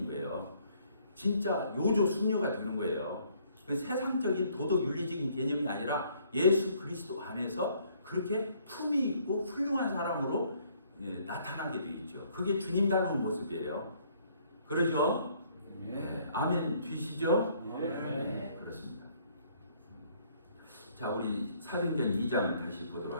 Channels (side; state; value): both; inverted; correlation -0.64